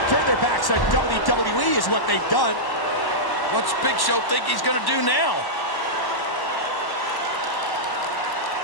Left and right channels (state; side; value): late; right; 1.1 ms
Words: turned their backs on WWE is what they've done. What's Big Show think he's going to do now?